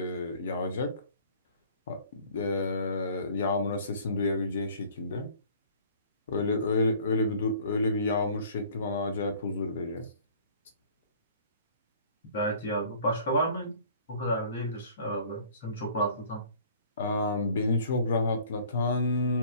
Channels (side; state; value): both; inverted; correlation -0.52